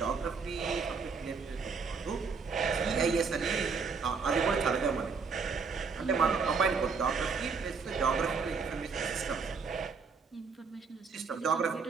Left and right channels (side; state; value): left; quieter; 5.2 dB